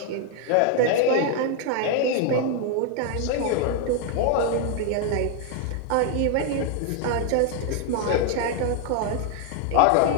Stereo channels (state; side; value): different; both; correlation 0.00